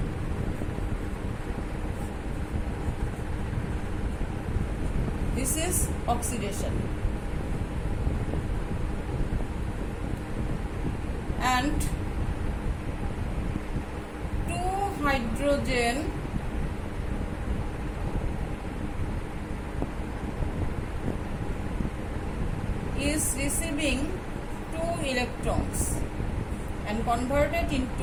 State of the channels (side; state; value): both; identical; correlation 1.00